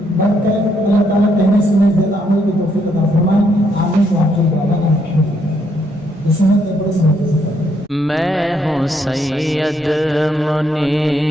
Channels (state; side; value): normal; both; correlation 0.73